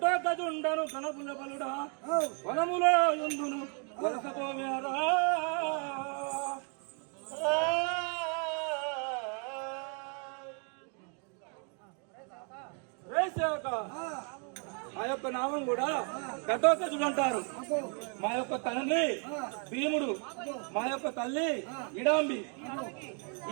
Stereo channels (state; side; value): quieter; left; 39.7 dB